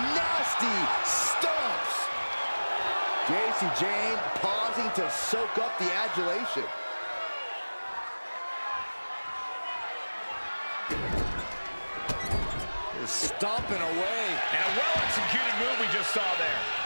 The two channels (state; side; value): inverted; both; correlation -1.00